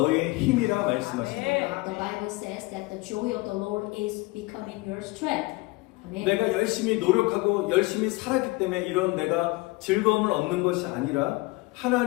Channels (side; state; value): right; quieter; 22.9 dB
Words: 힘이라 말씀하십니다. The Bible says that the joy of the Lord is becoming your strength. Amen. 내가 열심히 노력하고 열심히 살았기 때문에 이런 내가 즐거움을 얻는 것이 아니라